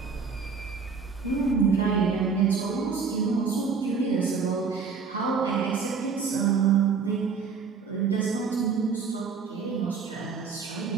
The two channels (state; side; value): quieter; left; 5.5 dB